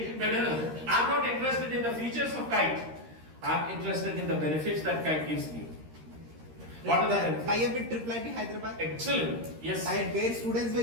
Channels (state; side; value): late; left; 13 ms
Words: I'm not interested in the features of Kite. I'm interested in the benefits that Kite gives me. What are the benefits? I have with Triple Hyderabad. Excellent. Yes. Where students